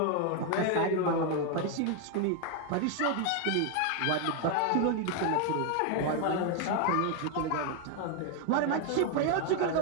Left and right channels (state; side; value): different; both; correlation 0.01